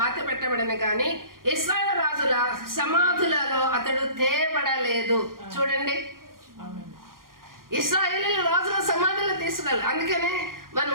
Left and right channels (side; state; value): left; late; 0.91 ms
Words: పెట్టబడిన కానీ ఇశ్రాయేలు రాజుల సమాధులలో అతడు తేబడలేదు. చూడండి, ఇశ్రాయేలు రాజుల సమాధులు తీసుకెళ్ళాలి. అందుకనే మనం